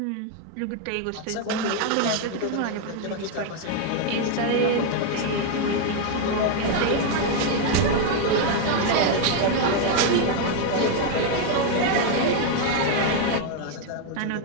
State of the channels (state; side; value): different; both; correlation 0.01